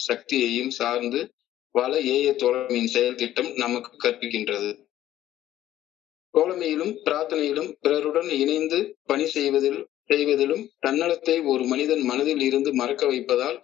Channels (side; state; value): right; quieter; 13.1 dB